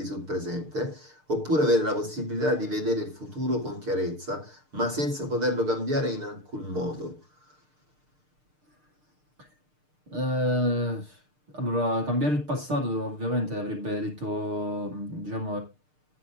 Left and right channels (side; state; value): left; late; 6.6 ms